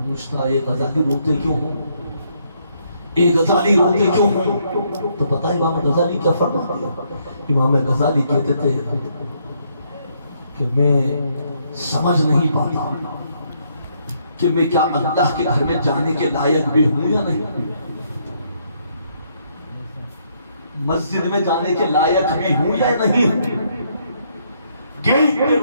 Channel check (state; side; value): inverted; both; correlation -0.72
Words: اے غزالی روتے کیوں ہو، اے غزالی روتے کیوں ہو، تو پتہ امام غزالی کیا فرماتے ہیں؟ امام غزالی کہتے تھے کہ میں سمجھ نہیں پاتا کہ میں کیا اللہ کے گھر میں جانے کے لائق بھی ہوں یا نہیں، مسجد میں جانے کے لائق بھی ہوں یا نہیں ہوں۔ گیٹ پہ